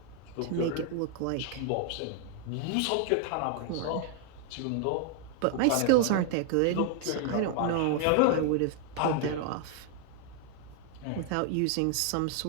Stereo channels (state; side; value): different; both; correlation 0.00